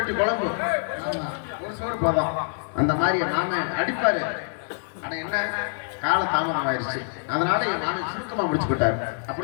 குழம்பு ஒரு சோறு போதும் அந்த மாதிரி என் மாமன் அடிப்பாரு. ஆனா என்ன கால தாமதம் ஆயிடுச்சு, அதனால என் மாமன் சுருக்கமா முடிச்சு போட்டாரு.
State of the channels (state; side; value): silent; right; 61 dB below the other